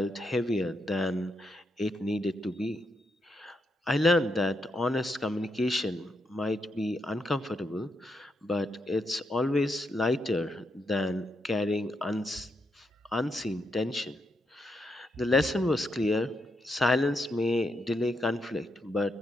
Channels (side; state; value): both; normal; correlation 0.81